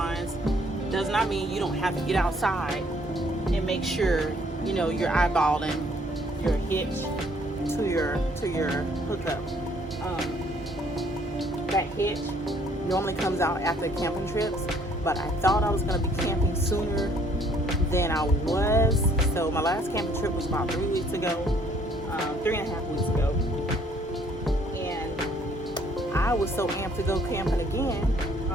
does not mean you don't have to get outside and make sure you're eyeballing your hitch to your hookup. That hitch normally comes out after camping trips, but I thought I was going to be camping sooner than I was. So my last camping trip was about 3 weeks ago, 3.5 weeks ago. I was so amped to go camping again.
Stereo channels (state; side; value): normal; both; correlation 0.63